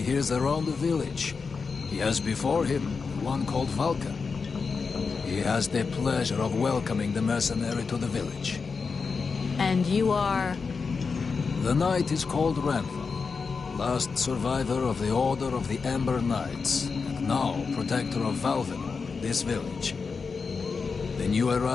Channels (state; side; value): quieter; right; 5.0 dB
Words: hears around the village, he has before him one called Vulcan. He has the pleasure of welcoming the mercenary to the village. And you are... The knight is called Rantham, last survivor of the Order of the Amber Knights, and now protector of Valvenor, this village. The new